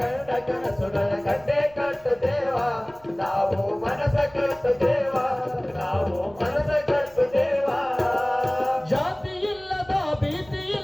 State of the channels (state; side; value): noise; right; rumble, 25 dB below the sound